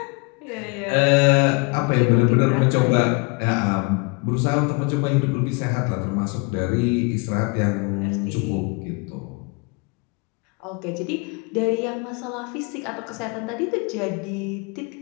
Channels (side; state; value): right; quieter; 30.4 dB